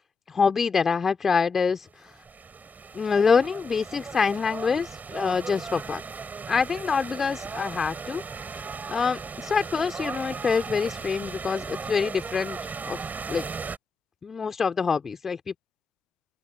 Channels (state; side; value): quieter; right; 4.5 dB